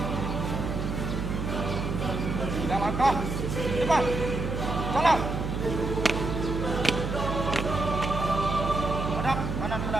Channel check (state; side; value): noise; right; hum, 3 dB below the sound